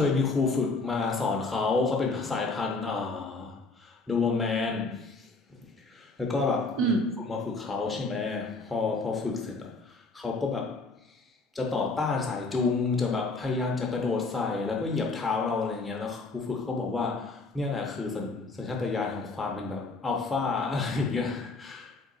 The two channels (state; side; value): quieter; right; 3.6 dB